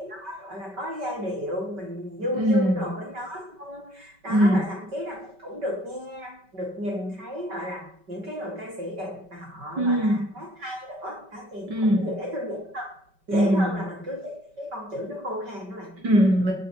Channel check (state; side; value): late; left; 5.2 ms